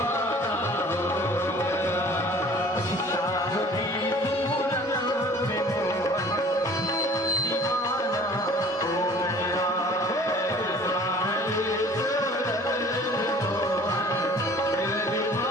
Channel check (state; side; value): normal; both; correlation 0.49